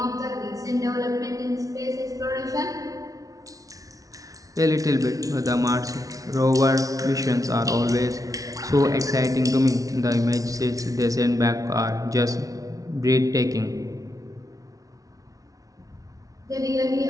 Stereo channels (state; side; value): late; left; 0.17 ms